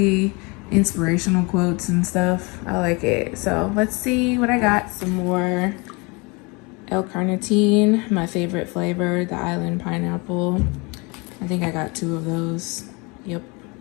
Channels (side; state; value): right; quieter; 28.3 dB